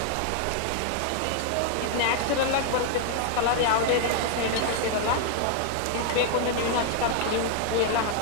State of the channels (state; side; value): different; both; correlation 0.00